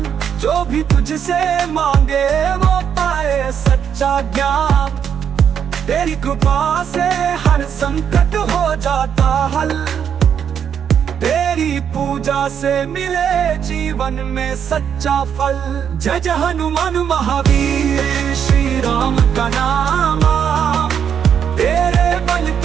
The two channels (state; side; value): quieter; left; 8.1 dB